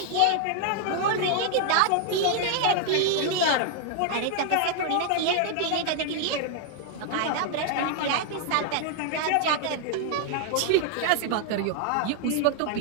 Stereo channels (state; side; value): different; both; correlation 0.00